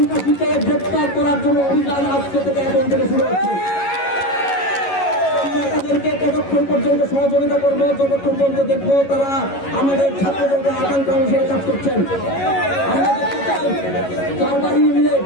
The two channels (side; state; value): right; late; 11 ms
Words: গ্রেপ্তার করার জন্য অভিযান আজকে থেকে এখন থেকে শুরু হচ্ছে। তাদেরকে ততক্ষণ পর্যন্ত সহযোগিতা করবো যতক্ষণ পর্যন্ত দেখবো তারা আমাদের ছাত্রদের আকাঙ্ক্ষা অনুসারে কাজ করছেন। আমরা দেখতে চাই চার বাহিনী মিলে,